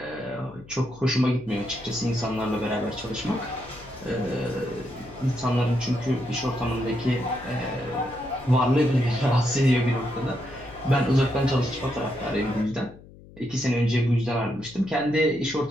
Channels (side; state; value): left; noise; hum, 21 dB below the sound